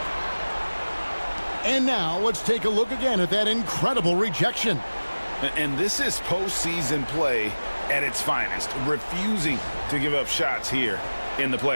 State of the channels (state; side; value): inverted; both; correlation -1.00